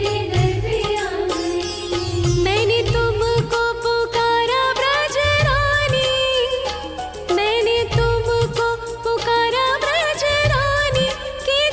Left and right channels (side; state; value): both; identical; correlation 1.00